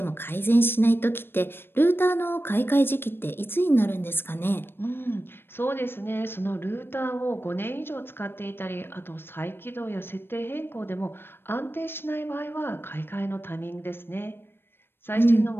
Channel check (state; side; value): late; right; 0.10 ms